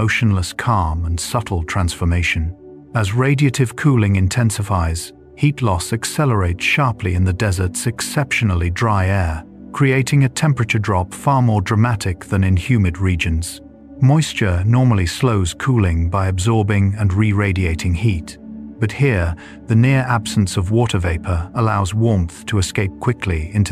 calm and subtle transformation. As radiative cooling intensifies, heat loss accelerates sharply in the desert's exceptionally dry air, creating a temperature drop far more dramatic than in humid regions. Moisture normally slows cooling by absorbing and re-radiating heat, but here, the near absence of water vapor allows warmth to escape quickly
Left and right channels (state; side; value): identical; both; correlation 1.00